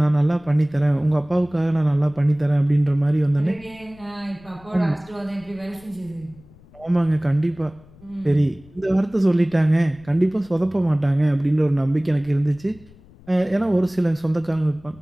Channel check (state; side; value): noise; left; rumble, 25 dB below the sound